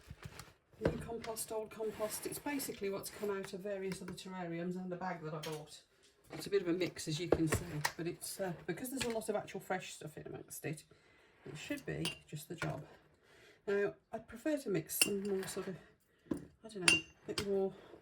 new compost, old compost. It's basically what's come out of various other terrariums and the bag that I bought. It's a bit of a mix, as you can see, but it's because there's a lot of actual fresh stuff in amongst it, it should be just the job. Now, I'd prefer to mix some more sort of, I don't know, a bit more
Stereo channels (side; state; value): both; identical; correlation 1.00